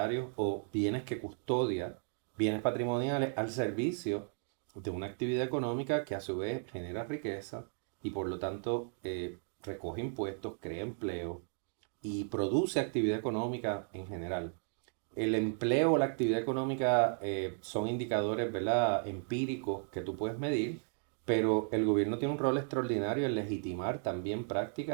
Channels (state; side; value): silent; left; 55 dB below the other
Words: o bienes que custodia, bienes patrimoniales, al servicio de una actividad económica que a su vez genera riqueza y por lo tanto recoge impuestos, crea empleo y produce actividad económica en general. El empleo o la actividad económica son indicadores, ¿verdad?, empíricos que tú puedes medir, pero el gobierno tiene un rol extraordinario en legitimar también